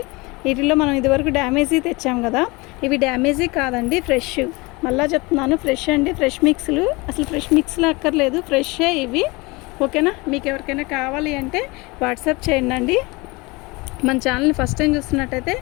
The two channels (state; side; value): quieter; right; 24.8 dB